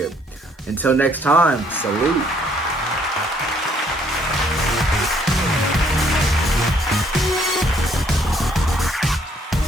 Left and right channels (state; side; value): normal; both; correlation 0.65